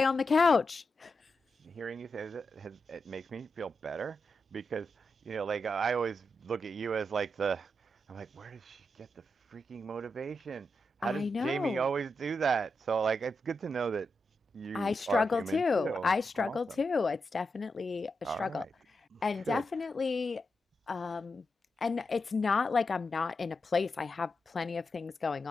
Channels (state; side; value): normal; both; correlation 0.87